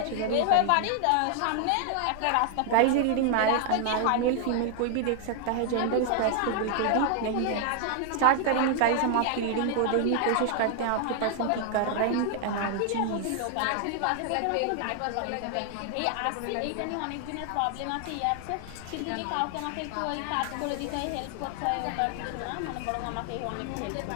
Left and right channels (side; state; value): both; different; correlation 0.00